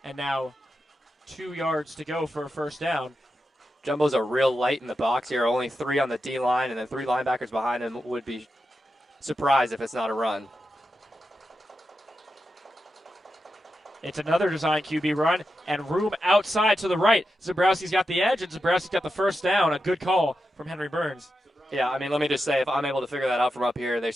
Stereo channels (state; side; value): normal; both; correlation 0.88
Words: And now 2 yards to go for a first down. Jumbo's a real light in the box here. Only 3 on the D-line, and then 3 linebackers behind him. Would be surprised if it's not a run. It's another design QB run, and room outside to the right. Zembrowski's got the edge, and Zembrowski's got the first down. A good call from Henry Burns. Yeah, I mean, let me just say, if I'm able to figure that out from up here, they